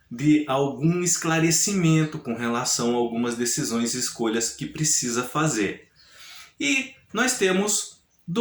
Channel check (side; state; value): both; identical; correlation 1.00